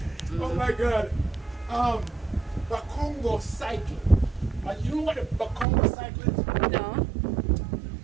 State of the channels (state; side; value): drops out; left; at 5.7 s